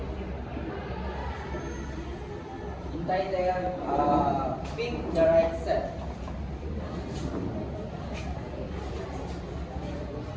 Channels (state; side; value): identical; both; correlation 1.00